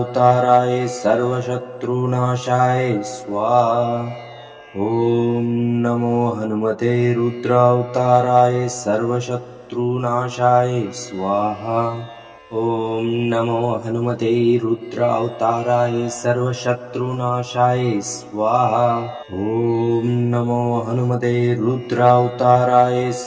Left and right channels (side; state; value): both; identical; correlation 1.00